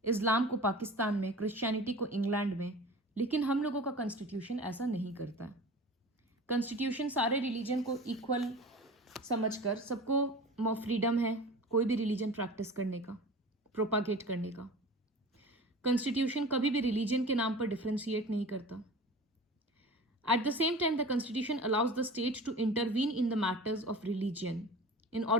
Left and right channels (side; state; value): both; normal; correlation 0.37